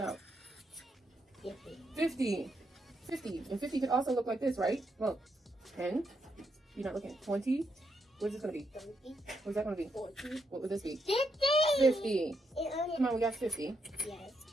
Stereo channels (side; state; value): both; normal; correlation 0.79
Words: out. 50. 50. 50. And 50 could also look like this, right? Well, 10. You're not looking. 20. What is this going to be? 30. What's that going to be? 40. What would this be? 50. 50. It Come on, we got 50. Yes.